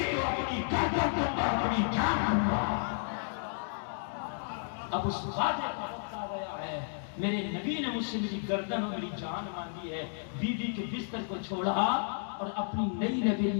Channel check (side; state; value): right; silent; digital silence